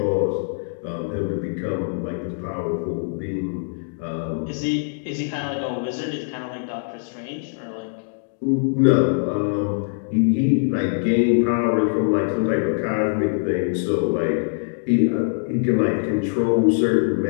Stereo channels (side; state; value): right; silent; digital silence